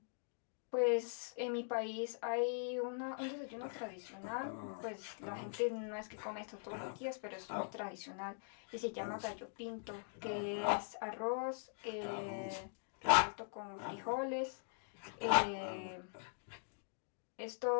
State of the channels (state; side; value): silent; right; digital silence